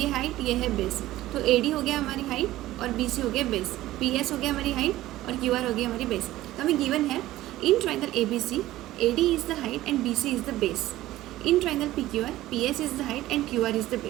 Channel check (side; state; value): left; quieter; 15.7 dB